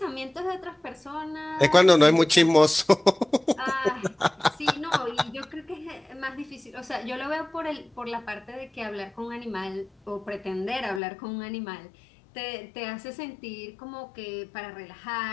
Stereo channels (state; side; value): drops out; right; at 11.0 s